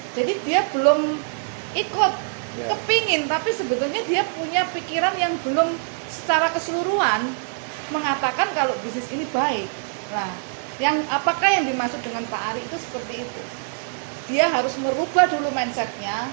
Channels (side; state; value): left; silent; digital silence